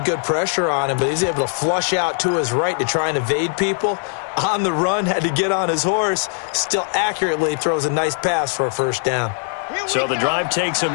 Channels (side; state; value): right; silent; 56 dB below the other